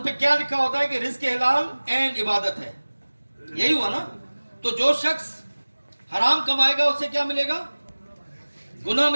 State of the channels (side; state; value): both; inverted; correlation -1.00